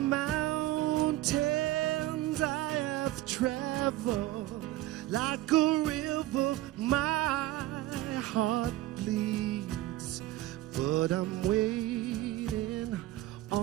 mountains I have traveled, like a river my heart bleeds, but I'm waiting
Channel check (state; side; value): quieter; left; 16.2 dB